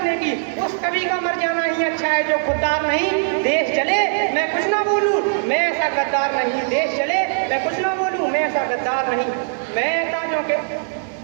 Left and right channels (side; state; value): left; silent; digital silence